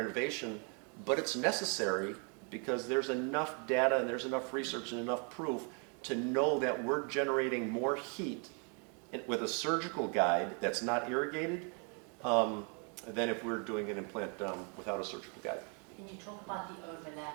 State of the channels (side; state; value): left; quieter; 37.4 dB